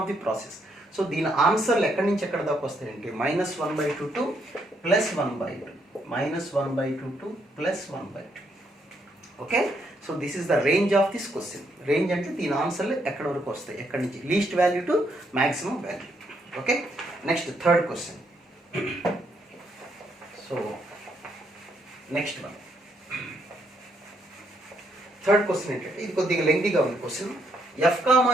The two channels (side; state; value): both; normal; correlation 0.74